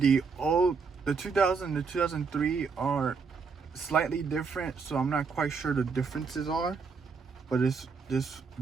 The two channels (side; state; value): left; quieter; 5.2 dB